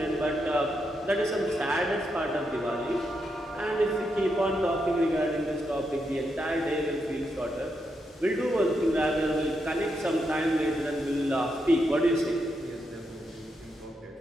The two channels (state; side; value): normal; both; correlation 0.82